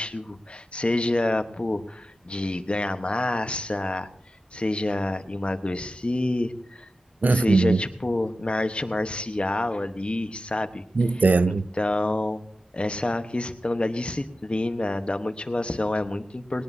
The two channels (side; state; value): both; normal; correlation 0.92